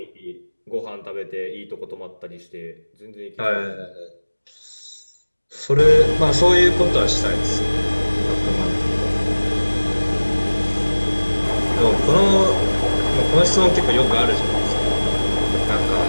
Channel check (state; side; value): inverted; both; correlation -1.00